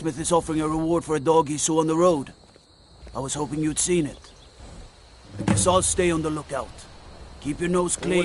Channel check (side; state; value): both; identical; correlation 1.00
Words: is offering a reward for a dog he saw on the road. I was hoping you'd seen it. I guess I'll stay on the lookout. Keep your nose